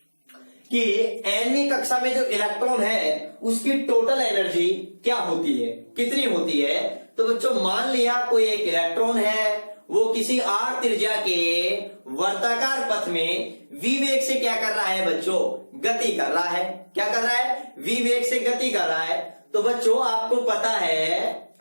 कि 9वीं कक्षा में जो इलेक्ट्रॉन है उसकी टोटल एनर्जी क्या होती है, कितनी होती है। तो बच्चों, मान लिया कोई एक इलेक्ट्रॉन है, वो किसी r त्रिज्या के वर्ताकार पथ में v वेग से क्या कर रहा है बच्चों, गति कर रहा है। क्या कर रहा है? v वेग से गति कर रहा है। तो बच्चों, आपको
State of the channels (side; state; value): both; inverted; correlation -1.00